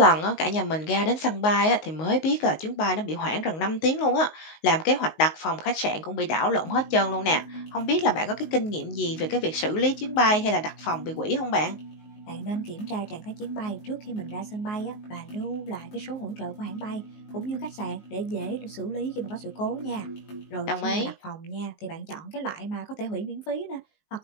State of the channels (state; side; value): late; right; 19 ms